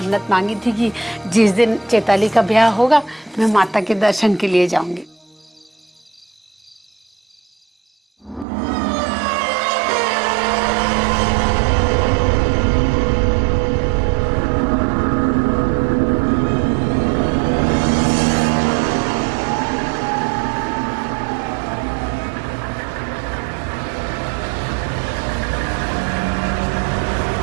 मांगी थी कि जिस दिन चैताली का ब्याह होगा मैं माता के दर्शन के लिए जाऊंगी।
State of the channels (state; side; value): drops out; left; at 8.5 s